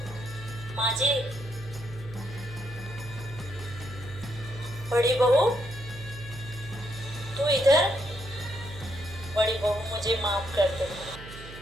माँ जी, बड़ी बहू तू इधर। बड़ी बहू मुझे माफ कर दो।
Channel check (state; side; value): noise; right; hum, 14 dB below the sound